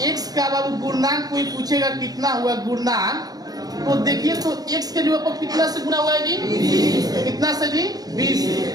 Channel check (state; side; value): late; left; 0.18 ms